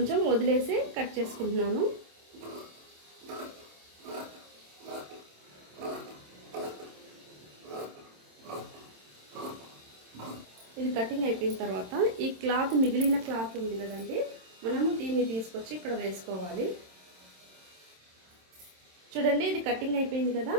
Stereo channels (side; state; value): left; late; 27 ms